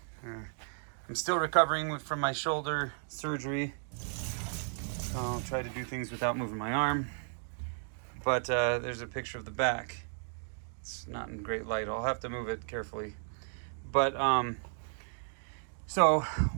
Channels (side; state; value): left; silent; digital silence